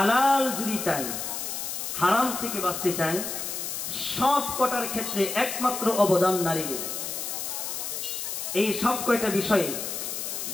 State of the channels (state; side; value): noise; left; hiss, 4 dB below the sound